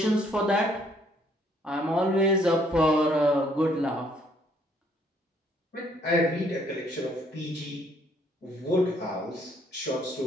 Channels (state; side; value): normal; both; correlation 0.66